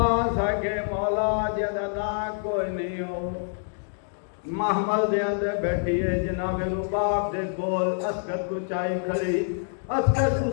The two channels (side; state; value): right; silent; digital silence